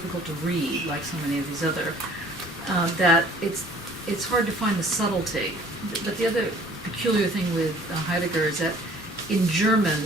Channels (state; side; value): normal; both; correlation 0.53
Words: to read, like so many of these other, that it's hard to find the subtlety. But the other peculiar thing with Heidegger is that in